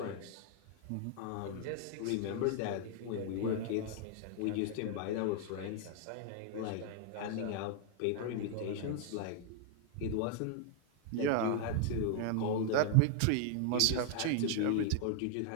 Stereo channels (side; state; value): both; different; correlation 0.00